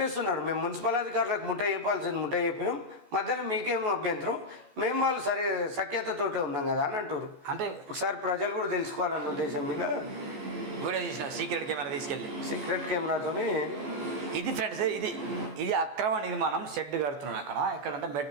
మేము మున్సిపల్ అధికారులకు ముట్ట చెప్పాల్సింది ముట్ట చెప్పినాం, మధ్యలో మీకేమో అభ్యంతరం, మేము వాళ్ళు సరే సఖ్యతతోటే ఉన్నాం కదా అని అంటారు. అంటే ఒకసారి ప్రజలు కూడా తెలుసుకోవాలన్న ఉద్దేశం మీద వీడియో తీసిన సీక్రెట్ కెమెరా తీసుకెళ్ళి సీక్రెట్ కెమెరాతోని ఇది ఫ్రెండ్స్, ఇది అక్రమ నిర్మాణం షెడ్ కడుతున్నాడు అక్కడ. ఎక్కడంటే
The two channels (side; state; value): left; late; 14 ms